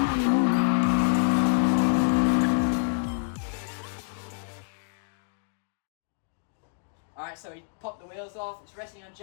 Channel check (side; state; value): right; silent; digital silence